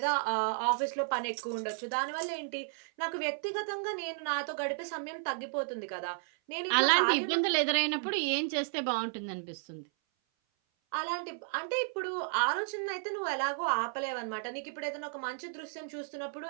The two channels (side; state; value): left; silent; 56 dB below the other